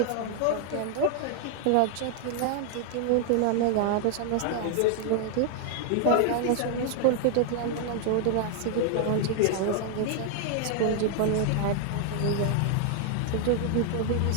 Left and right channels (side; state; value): both; different; correlation 0.00